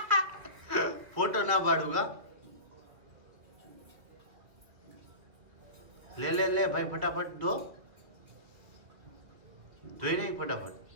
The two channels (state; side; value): late; left; 2.7 ms